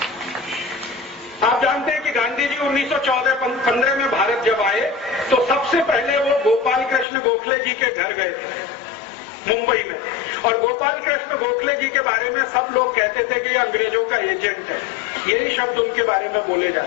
आप जानते हैं कि गांधी जी 1914-15 में भारत जब आए तो सबसे पहले वो गोपाल कृष्ण गोखले जी के घर गए थे मुंबई में। और गोपाल कृष्ण गोखले जी के बारे में सब लोग कहते थे कि ये अंग्रेजों का एजेंट है, यही शब्द उनके बारे में बोले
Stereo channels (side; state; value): right; drops out; at 7.1 s